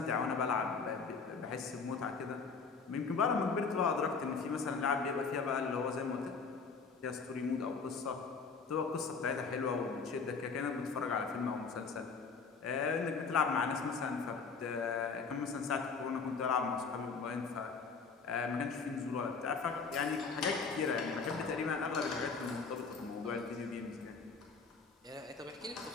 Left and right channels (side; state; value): right; quieter; 5.0 dB